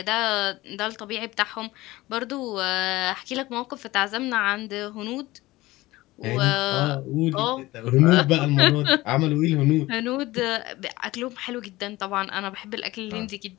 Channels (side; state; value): right; quieter; 18.8 dB